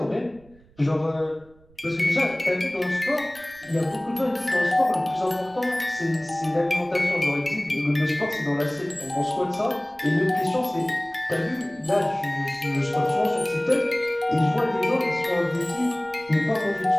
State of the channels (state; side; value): noise; right; rumble, 28 dB below the sound